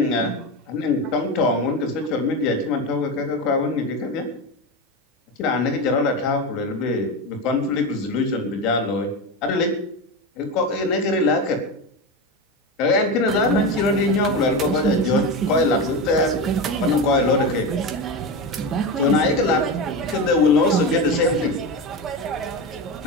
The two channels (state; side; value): normal; both; correlation 0.19